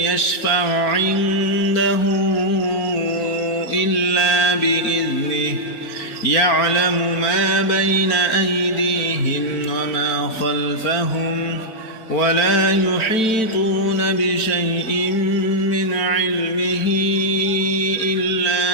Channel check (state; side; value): late; right; 4.5 ms